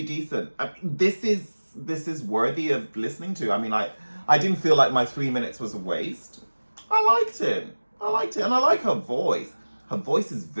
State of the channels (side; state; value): both; inverted; correlation -1.00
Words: decent. I mean, this is worthy of listening to. I mean, I didn't feel like my 3 minutes was a waste. I liked it. And I like her voice. Her voice is